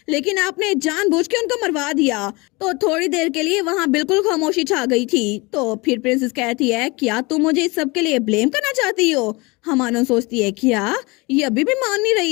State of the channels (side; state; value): right; quieter; 25.4 dB